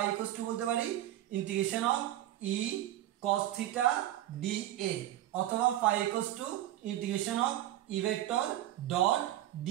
ইকুয়ালস টু বলতে পারি integration of E cos theta d A, অথবা phi equals to integration of E vector dot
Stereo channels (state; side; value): quieter; left; 13.6 dB